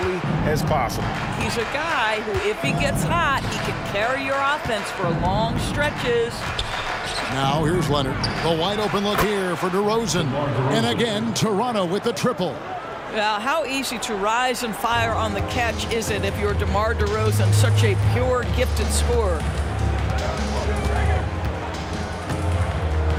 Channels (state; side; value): identical; both; correlation 1.00